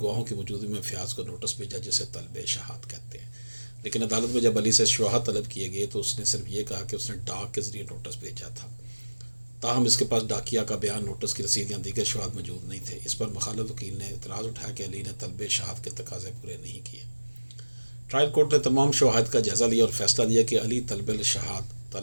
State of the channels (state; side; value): inverted; both; correlation -1.00